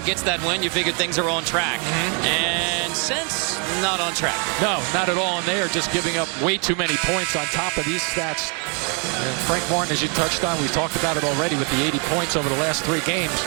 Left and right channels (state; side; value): quieter; left; 36.8 dB